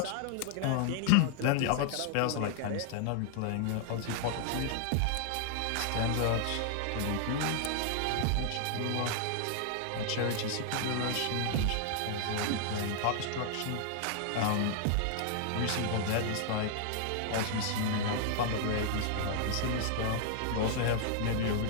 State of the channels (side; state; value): both; different; correlation -0.01